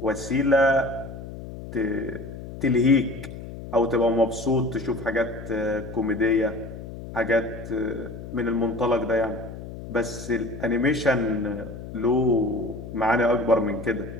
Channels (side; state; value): left; noise; hum, 11 dB below the sound